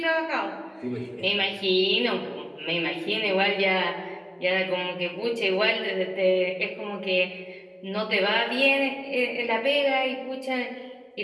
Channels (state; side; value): identical; both; correlation 1.00